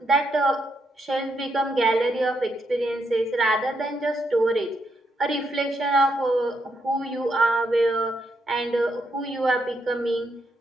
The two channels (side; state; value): both; normal; correlation 0.79